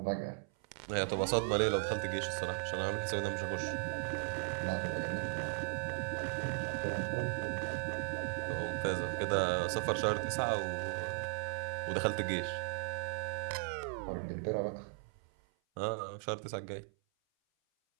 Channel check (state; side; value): silent; left; 53 dB below the other